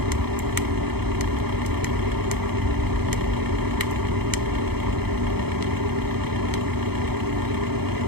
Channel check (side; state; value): left; late; 0.97 ms